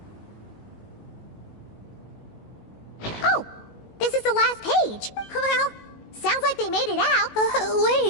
Oh, this is the last page. Well, sounds like they made it out.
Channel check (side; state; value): right; late; 19 ms